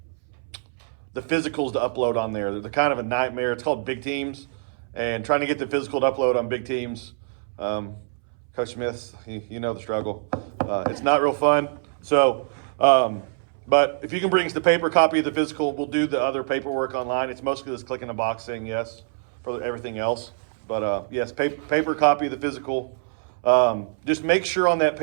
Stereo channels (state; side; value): silent; left; 62 dB below the other